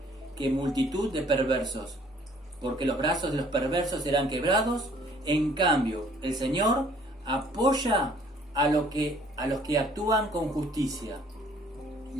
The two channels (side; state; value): both; normal; correlation 0.58